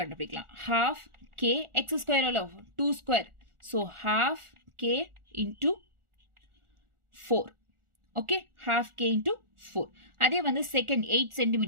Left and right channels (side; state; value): left; late; 1.4 ms